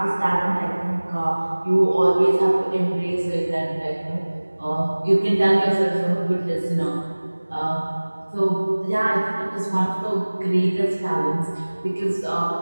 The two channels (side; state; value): both; inverted; correlation -1.00